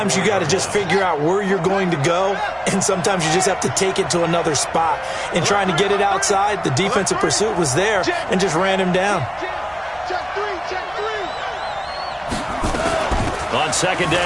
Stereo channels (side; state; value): both; identical; correlation 1.00